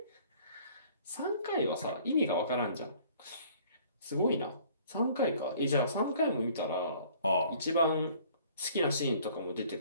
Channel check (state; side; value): inverted; both; correlation -0.55